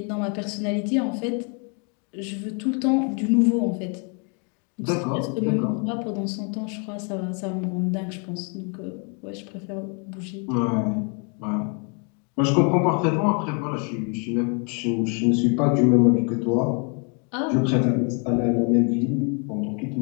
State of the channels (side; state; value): right; quieter; 37.3 dB